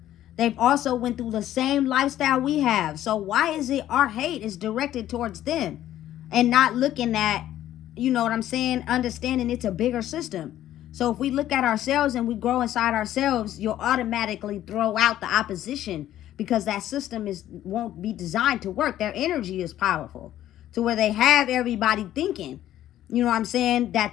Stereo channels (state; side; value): quieter; right; 12.7 dB